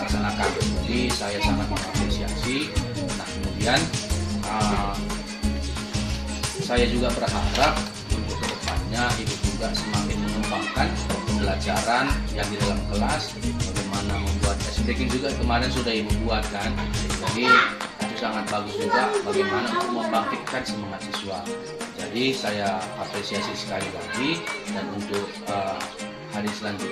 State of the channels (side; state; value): both; identical; correlation 1.00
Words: Jadi saya sangat mengapresiasi. Nah, kemudian saya juga berharap untuk kedepannya Ibu juga semakin mengembangkan pembelajaran yang di dalam kelas. Bagaimana membuat breaking juga kemarin sudah Ibu buat kan. Jadi itu sangat bagus juga bagaimana untuk membangkitkan semangat siswa. Jadi saya apresiasi sekali lagi, dan untuk hari